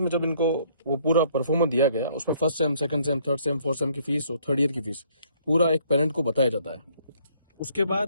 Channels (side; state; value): both; inverted; correlation -0.64